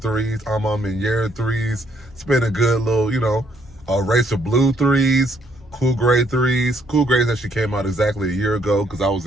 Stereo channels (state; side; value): normal; both; correlation 0.69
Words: Minyera threes. It's been a good little, race of blue threes, Cool Gray threes. Cool Grays actually came out exactly a year ago because I was